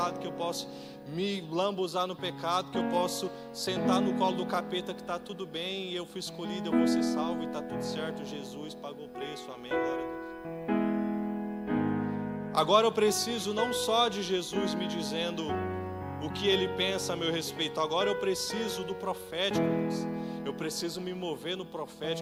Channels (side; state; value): both; identical; correlation 1.00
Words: que eu posso me lambuzar no pecado, que eu posso sentar no colo do capeta que está tudo bem, e eu fui escolhido, eu vou ser salvo e está tudo certo. Jesus pagou o preço, amém, glória a Deus. Agora eu preciso não só de Jesus me dizendo o que Ele pensa a meu respeito, agora eu preciso do profético. Eu preciso me mover no